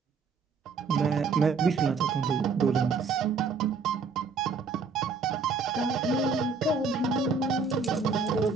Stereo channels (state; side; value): quieter; left; 4.8 dB